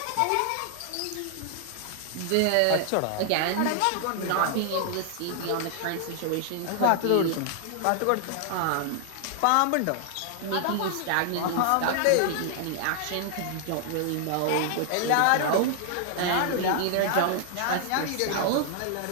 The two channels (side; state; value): both; different; correlation 0.00